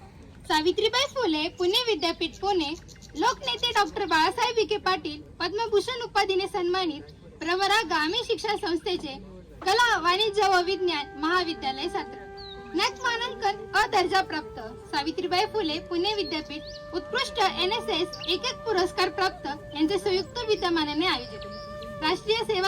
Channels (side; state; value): both; identical; correlation 1.00